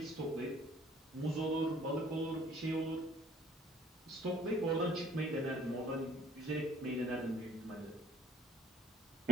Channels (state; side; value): normal; both; correlation 0.59